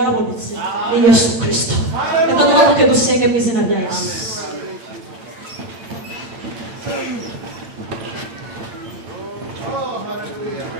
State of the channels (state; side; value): late; left; 8.6 ms